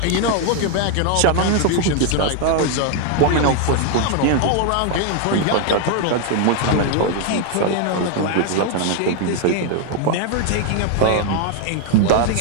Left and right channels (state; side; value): different; both; correlation 0.00